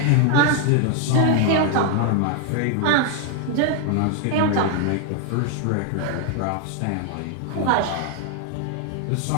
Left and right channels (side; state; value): both; different; correlation 0.00